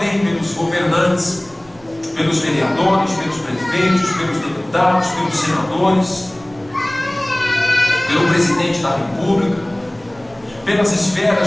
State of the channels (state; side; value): noise; right; rumble, 27 dB below the sound